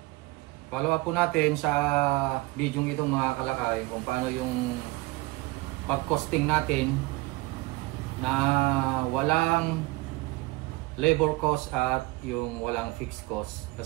Follow up po natin sa video ito mga kalakay kung paano yung pag-costing natin na walang labor cost at yung walang fixed cost.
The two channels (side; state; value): left; quieter; 22.2 dB